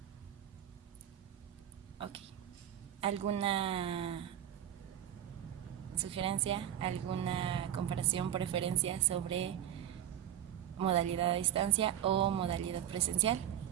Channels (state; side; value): quieter; left; 11.0 dB